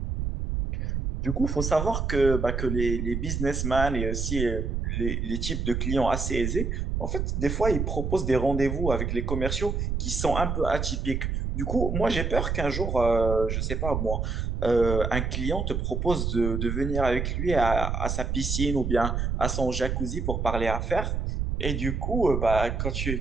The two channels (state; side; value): noise; right; rumble, 1 dB below the sound